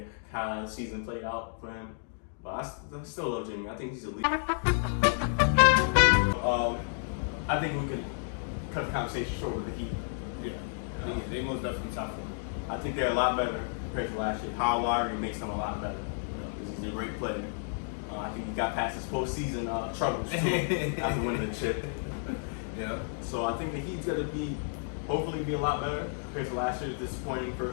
season played out for him. But I still love Jimmy. I think he's elite. I think we could cut the conversation short with the Heat. Yeah, they most definitely top 4. I think they're a lot better compared to last year. Kyle Lowry makes them a lot better because he's a great player. I think he got past his postseason troubles too after winning the chip. Yeah. So I think the Heat's gonna hopefully be a lot better compared to last year's disappointing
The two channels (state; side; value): silent; right; digital silence